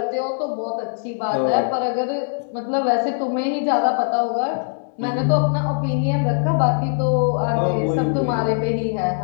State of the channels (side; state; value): right; silent; 65 dB below the other